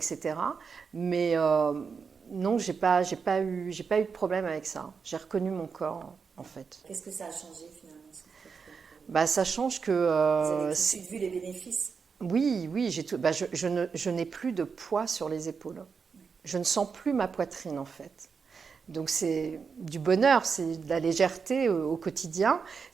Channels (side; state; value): left; quieter; 5.6 dB